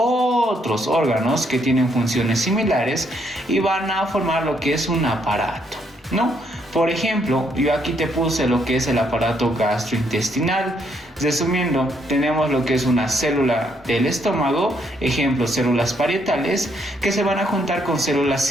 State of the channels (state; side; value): normal; both; correlation 0.72